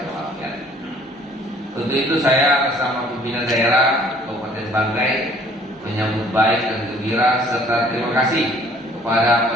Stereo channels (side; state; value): both; normal; correlation 0.56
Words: walafiat. Untuk itu saya atas nama pimpinan daerah Kabupaten Banggai menyambut baik dan gembira serta terima kasih kepada